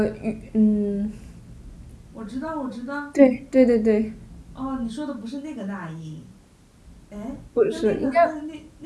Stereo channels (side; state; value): both; identical; correlation 1.00